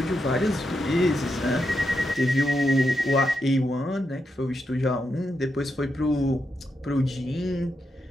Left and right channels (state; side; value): normal; both; correlation 0.84